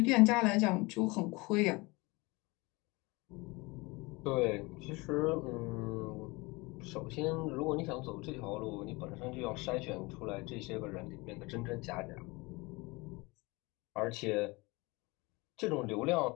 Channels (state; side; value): quieter; right; 24.5 dB